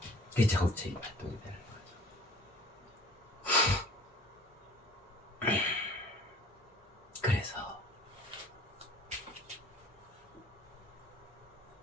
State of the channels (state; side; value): normal; both; correlation 0.48